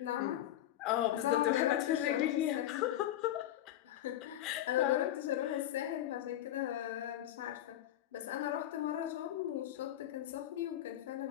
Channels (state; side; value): quieter; right; 12.6 dB